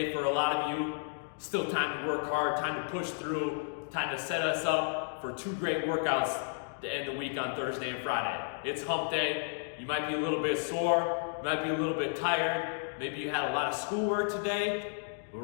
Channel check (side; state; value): right; silent; digital silence